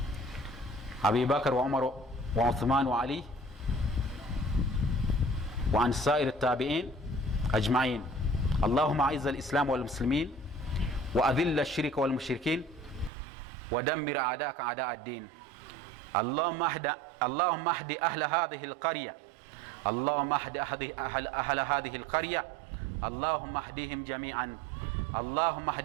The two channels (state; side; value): drops out; left; at 13.1 s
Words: Abi Bakr wa Umar wa Uthman wa Ali wa an sa'ir at-tabi'in ajma'in. Allahumma a'izz al-islam wal muslimin wa adhill ash-shirka wal mushrikin wa dammir a'da'aka a'da' ad-din. Allahumma ahdi ahla hadhihi al-qarya اللهم اهد أهل هذه القرية اللهم اهدهم جميعا اللهم